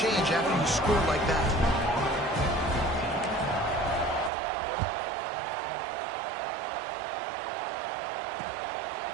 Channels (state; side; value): drops out; left; at 4.3 s